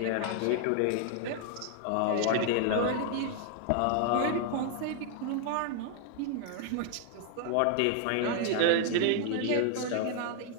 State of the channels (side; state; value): both; different; correlation 0.00